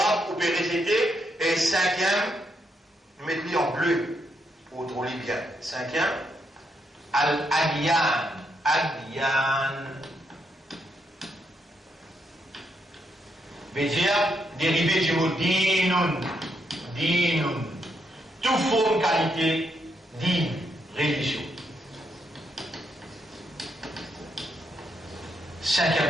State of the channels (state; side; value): normal; both; correlation 0.78